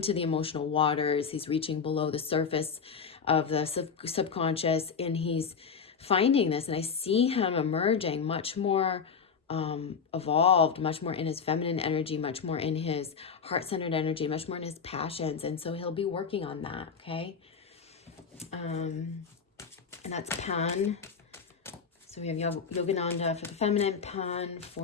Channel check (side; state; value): right; quieter; 6.0 dB